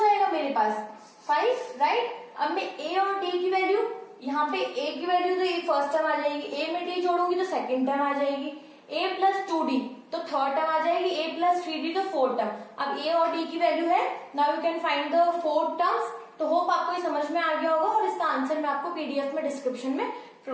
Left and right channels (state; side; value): identical; both; correlation 1.00